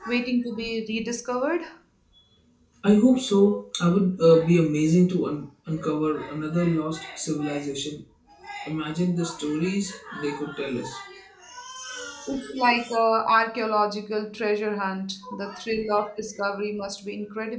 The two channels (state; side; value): identical; both; correlation 1.00